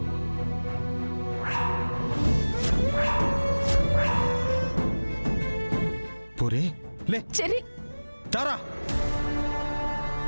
పూరి లే చెర్రీ, తారా,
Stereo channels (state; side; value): inverted; both; correlation -1.00